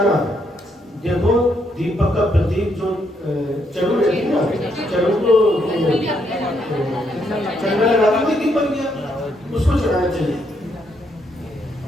देखो दीपक का प्रतीक जो चढ़ू रहती है ना, चढ़ू को चढ़ना लगा के दीपक गया, उसको चढ़ाना चाहिए।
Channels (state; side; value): normal; both; correlation 0.75